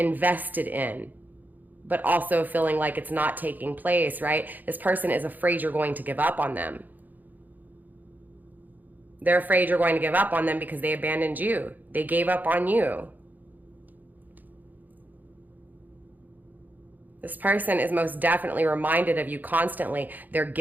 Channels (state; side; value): late; left; 0.084 ms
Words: in, but also feeling like it's not taking place, right? This person is afraid you're going to give up on them. They're afraid you're going to give up on them because they abandoned you. They gave up on you. This person is most definitely reminded of you constantly. They're